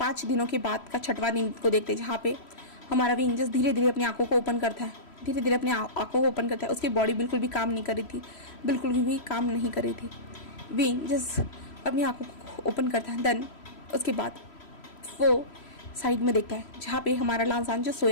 दिनों के बाद का 6वां दिन को देखते हैं, जहाँ पे हमारा विंग जस्ट धीरे धीरे अपनी आंखों को ओपन करता है, धीरे धीरे अपनी आंखों को ओपन करता है। उसकी बॉडी बिल्कुल भी काम नहीं कर रही थी, बिल्कुल भी काम नहीं कर रही थी। विंग जस्ट अपनी आंखों को ओपन करता है। देन उसके बाद वो साइड में देखता है, जहाँ पे हमारा लांसान जो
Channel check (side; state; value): right; late; 3.1 ms